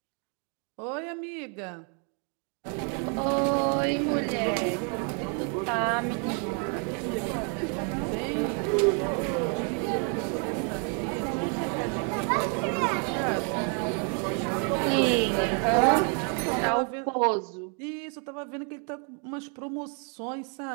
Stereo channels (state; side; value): quieter; left; 40.0 dB